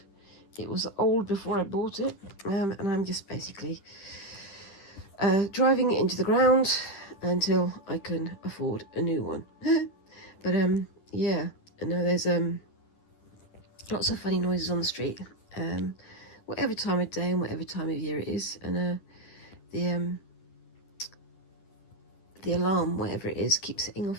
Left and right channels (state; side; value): late; right; 10 ms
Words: It was old before I bought it, and I'm just basically driving it into the ground until I can afford a new one. But yeah, I know there's lots of funny noises on the street, whatever time of day and whatever time of year it is, and the alarm, whatever it is, keeps setting